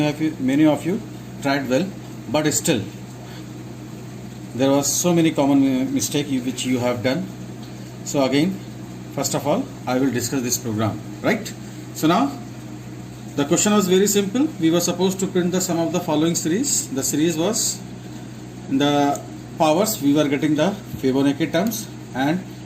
tried well, but still there was so many common mistake which you have done. So again, first of all I will discuss this program, right? So now the question was very simple. We were supposed to print the sum of the following series. The series was in the powers we were getting the Fibonacci terms, and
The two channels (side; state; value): both; identical; correlation 1.00